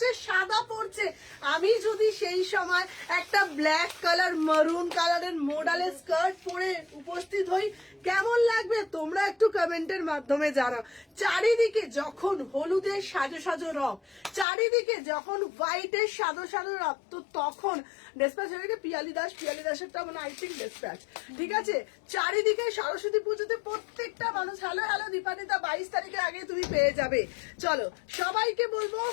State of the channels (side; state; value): right; drops out; at 14.5 s